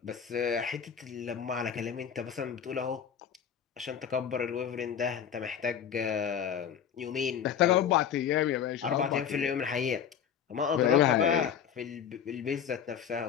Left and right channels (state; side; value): quieter; right; 8.4 dB